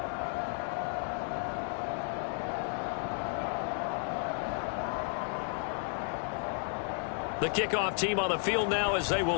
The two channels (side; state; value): right; silent; 56 dB below the other